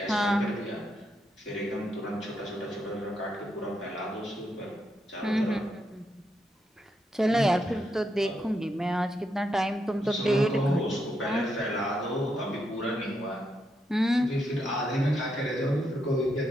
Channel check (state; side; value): normal; both; correlation 0.81